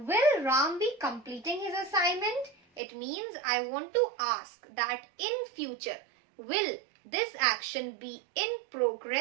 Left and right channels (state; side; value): drops out; left; at 2.8 s